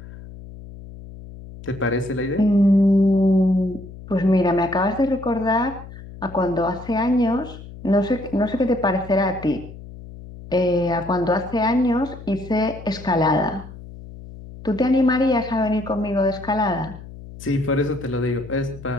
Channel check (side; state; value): left; noise; hum, 15 dB below the sound